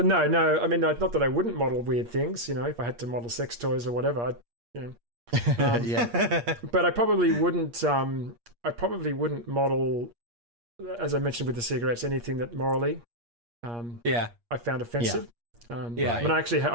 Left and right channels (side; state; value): left; late; 8.5 ms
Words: no. I mean, not that I wouldn't model weird things. If I had to model sex toys or whatever, yeah. But I probably wouldn't. Model as I mentioned with the cigarettes, anything that morally I found offensive. When